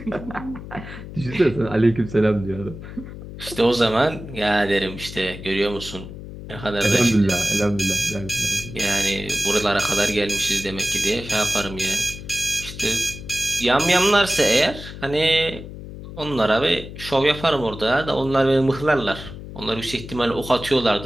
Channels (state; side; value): noise; left; hum, 12 dB below the sound